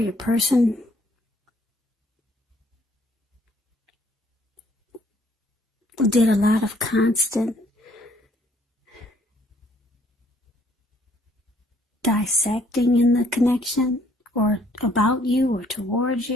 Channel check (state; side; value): normal; both; correlation 0.64